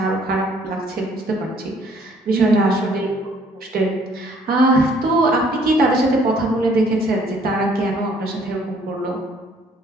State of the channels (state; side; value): normal; both; correlation 0.61